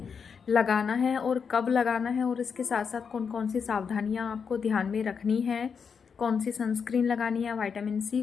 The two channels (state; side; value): quieter; right; 6.2 dB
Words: लगाना है और कब लगाना है, और इसके साथ साथ कौन कौन सी सावधानियां आपको ध्यान में रखनी है, कौन सी सनस्क्रीन लगानी है, विटामिन सी